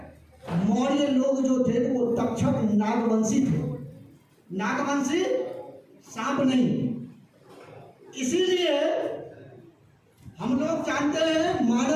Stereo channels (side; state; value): both; identical; correlation 1.00